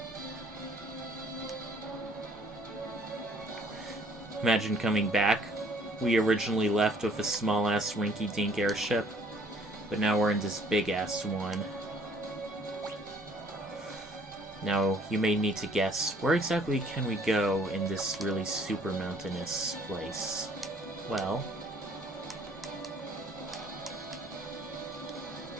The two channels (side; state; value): both; normal; correlation 0.59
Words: Imagine coming back. We originally left with a small-ass rinky-dink airship, but now we're in this big-ass one. Now, you may need to guess, where exactly can we go in this really super mountainous place? Well,